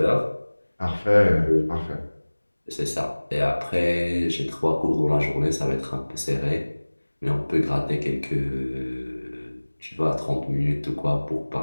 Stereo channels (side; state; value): both; inverted; correlation -1.00